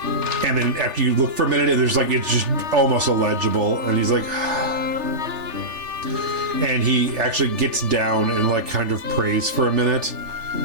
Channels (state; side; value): late; left; 3.4 ms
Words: And then after you look for a minute, and there's like, it's just almost illegible. And he's like, and he actually gets down and like kind of prays for a minute